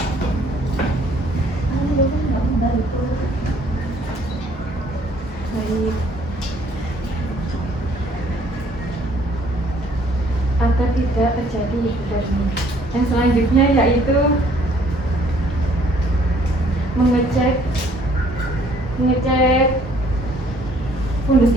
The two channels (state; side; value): normal; both; correlation 0.61